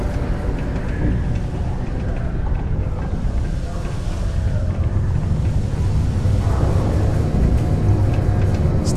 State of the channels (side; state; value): both; identical; correlation 1.00